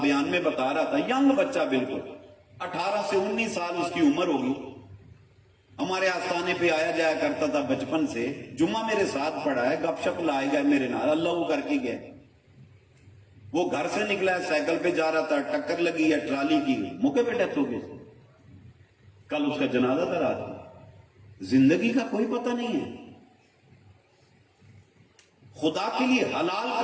بیان میں بتا رہا تھا، ینگ بچہ بالکل 18 سے 19 سال اس کی عمر ہوگی، ہمارے آستانے پہ آیا جایا کرتا تھا بچپن سے، جمعہ میرے ساتھ پڑھا ہے، گپ شپ لائے گئے میرے نال، اللہ وہ کر کے گئے۔ وہ گھر سے نکلا ہے، سائیکل پہ جا رہا تھا، ٹکر لگی ہے ٹرالی کی، موقع پہ ڈیتھ ہو گئی۔ کل اس کا جنازہ تھا رات۔ زندگی کا کوئی پتہ نہیں ہے۔ خدا کے لیے حلال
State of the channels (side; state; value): both; identical; correlation 1.00